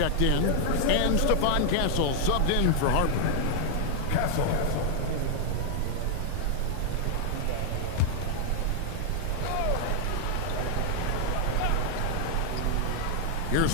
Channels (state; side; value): different; both; correlation 0.00